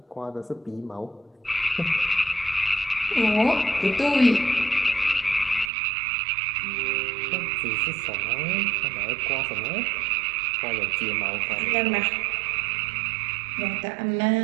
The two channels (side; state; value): left; drops out; at 5.7 s